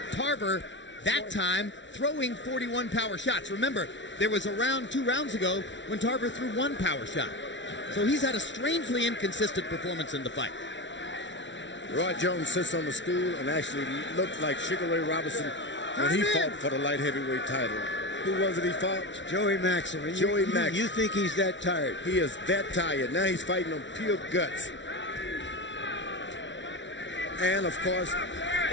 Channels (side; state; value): right; late; 0.54 ms